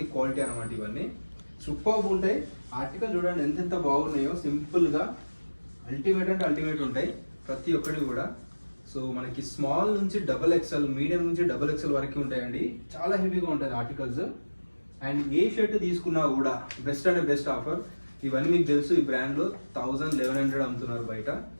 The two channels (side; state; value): both; inverted; correlation -1.00